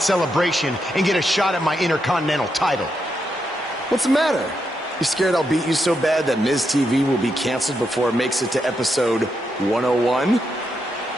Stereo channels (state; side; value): normal; both; correlation 0.83